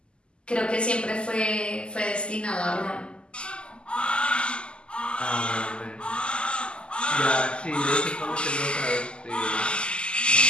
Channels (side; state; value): right; late; 0.051 ms